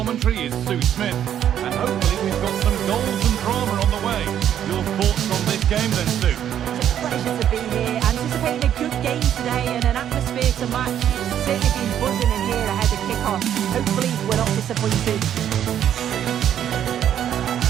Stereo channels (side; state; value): left; quieter; 10.1 dB